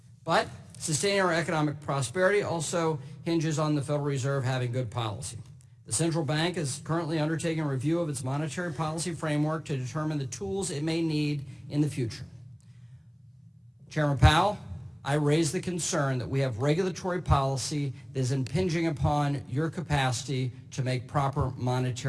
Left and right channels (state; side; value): identical; both; correlation 1.00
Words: But sustaining our economic prosperity also hinges on the Federal Reserve having good policy. The central bank is currently undertaking a review of its monetary policy framework to determine the tools it may need in the future. Chairman Powell, I raise the concern that we have regulatory policy that is impinging upon your capacity to make proper